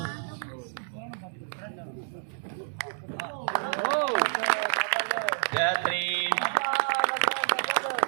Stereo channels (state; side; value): silent; left; digital silence